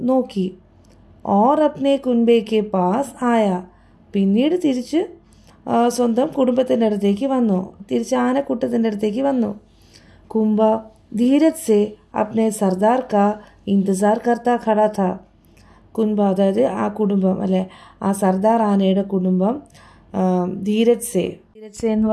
നോക്കി. ഓർ അപ്നെ കുൻബെ കെ പാസ് ആയ. പിന്നീട് തിരിച്ച് സ്വന്തം കുടുംബത്തിൻ്റെ അടുത്തേക്ക് വന്നു, തിരിച്ച് ആനക്കൂട്ടത്തിൻ്റെ അടുത്തേക്ക് വന്നു. കുംബ ധീരജ് സെ അപ്നെ സർദാർ കാ ഇന്തസാർ കർത്താ ഖടാ ഥാ. കുൻബ അതായത് ആ കുടുംബം, അല്ലെ ആ സർദാർ ആനയുടെ കുടുംബം ധീരജ് സെ എന്ന്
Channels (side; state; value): both; identical; correlation 1.00